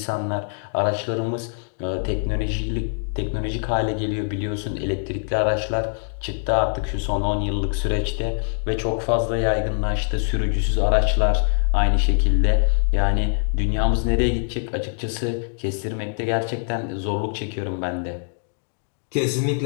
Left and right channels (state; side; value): silent; right; digital silence